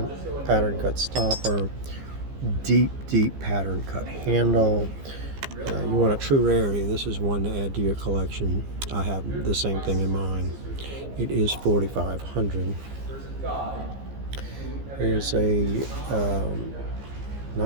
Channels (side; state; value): left; late; 15 ms